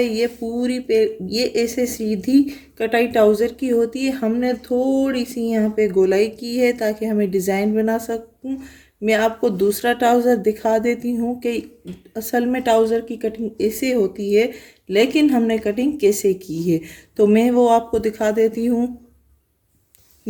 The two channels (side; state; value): both; identical; correlation 1.00